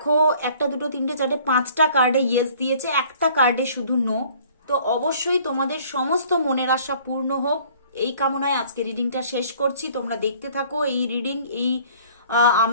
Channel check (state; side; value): inverted; both; correlation -0.54